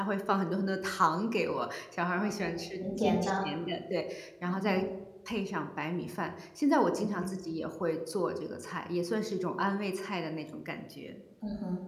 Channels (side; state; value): both; identical; correlation 1.00